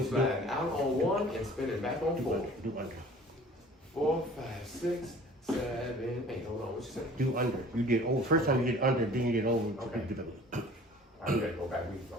Sliding out on 1 and spinning back on 4. Do under. 4, 5, 6, 7, 8. Hold on, what you say? Do under. You did over. First time you did under, then you did over. Okay. You did over. I'm ready to go back.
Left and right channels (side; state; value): both; normal; correlation 0.48